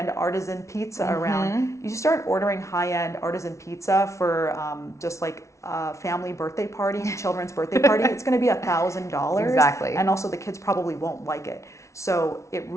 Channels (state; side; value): late; right; 0.14 ms